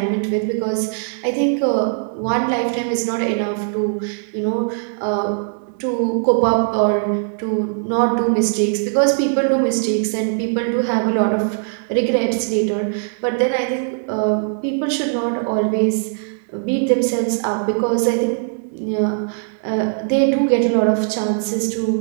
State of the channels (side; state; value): left; silent; digital silence